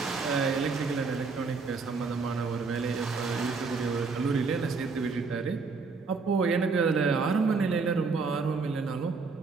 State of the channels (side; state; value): left; quieter; 4.5 dB